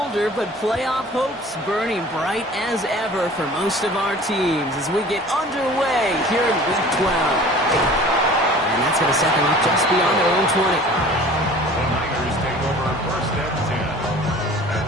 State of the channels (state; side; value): normal; both; correlation 0.45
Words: but playoff hopes burning bright as ever for most of our teams as we get underway here in Week 12. And that's going to set them up just beyond their own 20. The Niners take over first and 10